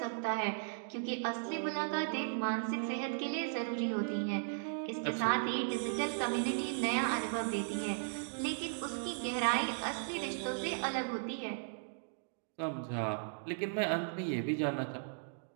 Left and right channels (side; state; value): left; silent; digital silence